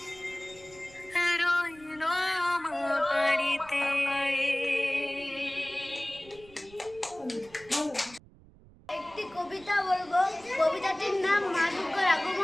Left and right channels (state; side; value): noise; right; rumble, 24 dB below the sound